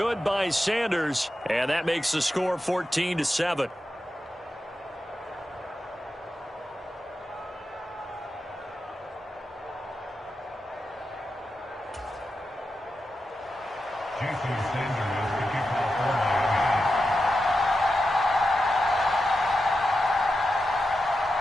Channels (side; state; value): both; normal; correlation 0.89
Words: by Sanders, and that makes the score 14-7.